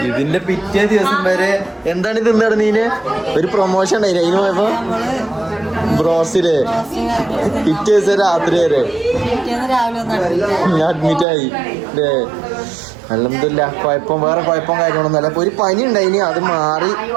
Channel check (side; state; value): left; drops out; at 11.2 s